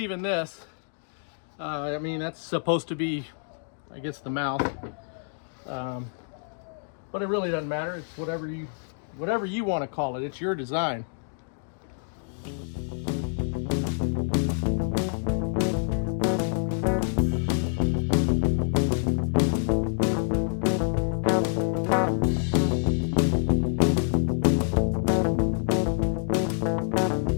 this. I mean, that's supposed to be, I guess, the mouth. But it really doesn't matter. It's whatever you want to call it. It's your design.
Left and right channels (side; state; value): right; silent; digital silence